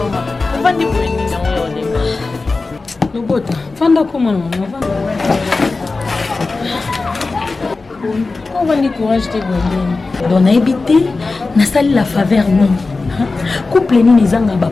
On va dire pour une mission. No bota, fanda como não, on va ni courage de bonheur. Donc na habité, na salle la faveur non. Couple ni nizanga ba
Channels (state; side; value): quieter; right; 3.7 dB